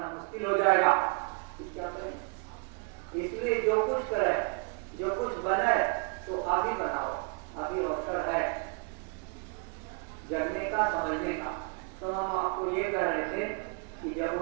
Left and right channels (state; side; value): quieter; left; 36.0 dB